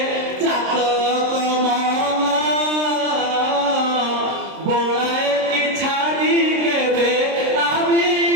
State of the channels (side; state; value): left; late; 26 ms